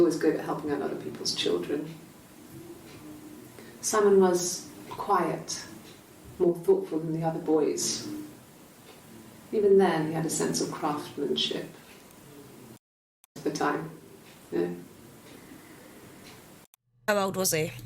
good at helping out other people's children. Simon was quiet, more thoughtful than the other boys. Even then, he had a sense of craftsmanship. At the time, How old was he?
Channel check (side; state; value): both; identical; correlation 1.00